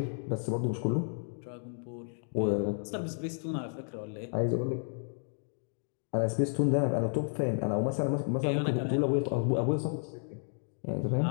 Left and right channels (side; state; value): right; silent; digital silence